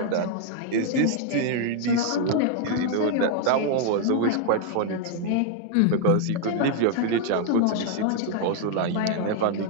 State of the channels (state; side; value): different; both; correlation 0.00